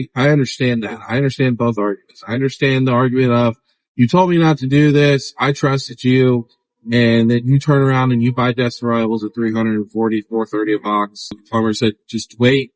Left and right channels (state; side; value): identical; both; correlation 1.00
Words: understand that. I understand both arguments. I understand the argument of, you told me not to do this. I trusted you. And then you turn around and you buy Destined Rivals at $340, $430 a box. Plumber said, just wait.